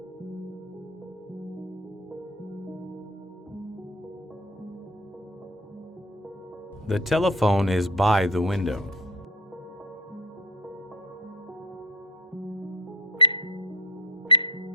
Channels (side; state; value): both; normal; correlation 0.26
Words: The telephone is by the window.